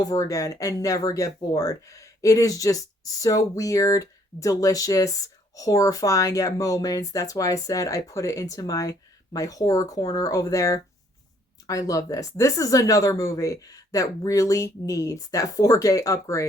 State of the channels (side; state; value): both; normal; correlation 0.65